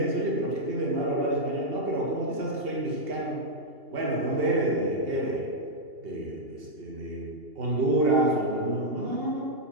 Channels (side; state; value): left; late; 2.8 ms